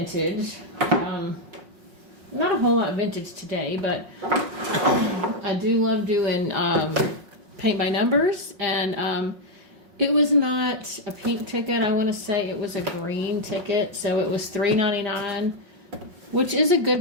Not a whole lot vintage today, but I do love doing paint by numbers, and it was not a pink ticket. I want to say it was a green ticket, so it was $3.99, which is a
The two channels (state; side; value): late; left; 5.5 ms